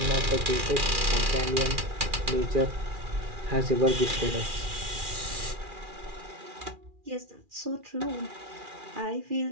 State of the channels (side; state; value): left; late; 2.4 ms